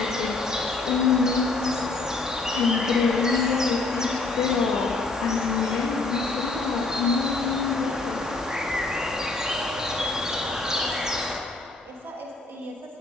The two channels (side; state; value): right; quieter; 3.5 dB